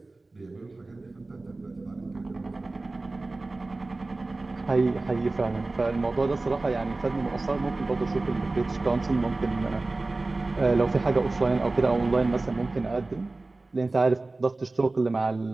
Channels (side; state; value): left; quieter; 3.2 dB